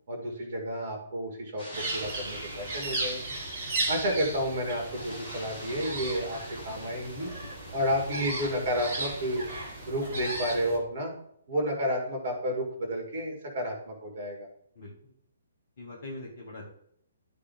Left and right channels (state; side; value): inverted; both; correlation -0.50